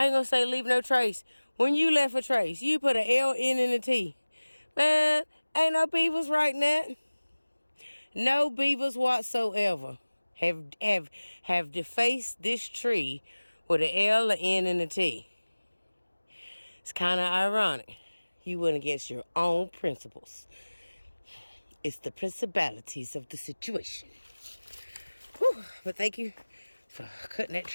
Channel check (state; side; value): inverted; both; correlation -1.00